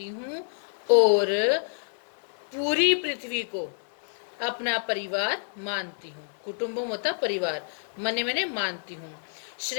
हूँ और पूरी पृथ्वी को अपना परिवार मानती हूँ। कुटुम्बम होता परिवार, मने मैंने मानती हूँ।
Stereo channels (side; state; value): right; silent; digital silence